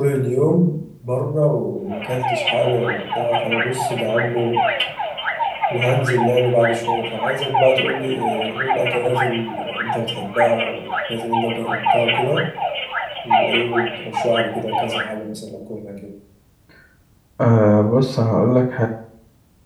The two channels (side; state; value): both; identical; correlation 1.00